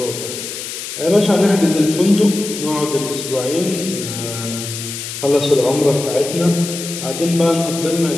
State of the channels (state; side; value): noise; left; hiss, 8 dB below the sound